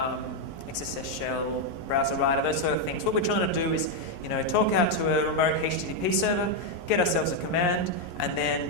XSS shell, browser writer, those sort of things. What we're trying to do is, you know, talk out to a remote HTTP server, get ourselves a command, and then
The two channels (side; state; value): right; late; 11 ms